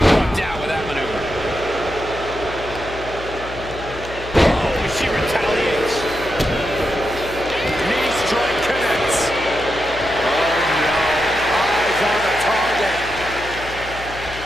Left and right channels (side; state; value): left; noise; hum, 13 dB below the sound